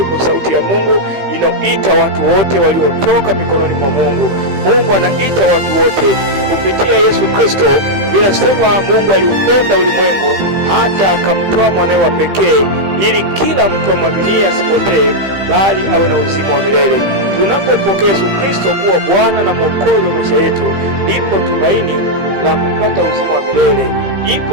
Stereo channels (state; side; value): late; left; 15 ms